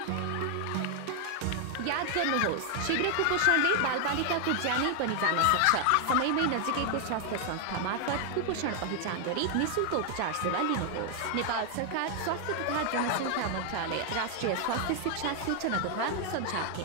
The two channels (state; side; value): different; both; correlation 0.00